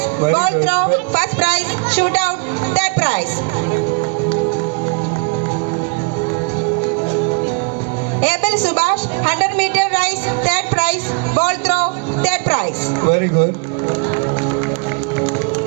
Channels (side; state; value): left; quieter; 35.8 dB